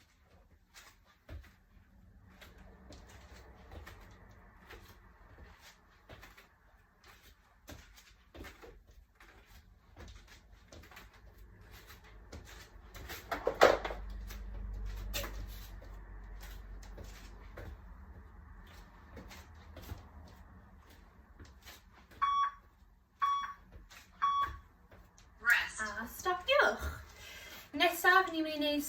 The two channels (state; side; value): identical; both; correlation 1.00